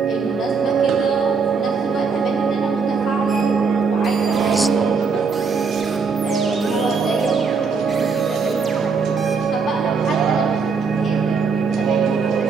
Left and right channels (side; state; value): left; quieter; 5.1 dB